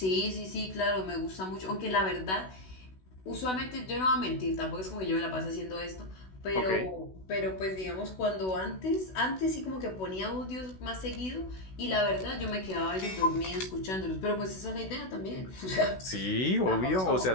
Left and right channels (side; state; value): right; late; 16 ms